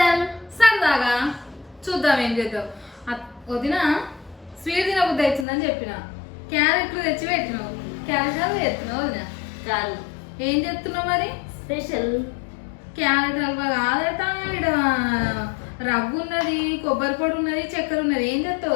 సరదాగా చూద్దాం ఏం చేద్దాం. వదిన స్వీట్ తినబుద్ధి అవుతుందని చెప్పిన క్యారెట్లు తెచ్చి పెట్టినావు. క్యారెట్ హల్వా చేస్తున్నావు వదిన కాదు, ఏం చేస్తున్నావు మరి? స్పెషల్ క్యారెట్ హల్వా కాదట, ఇక్కడ రవ్వు ఉన్నది, కొబ్బరి పొడి ఉన్నది, చక్కెర ఉన్నది. ఏం చేస్తావు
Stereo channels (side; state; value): right; drops out; at 5.5 s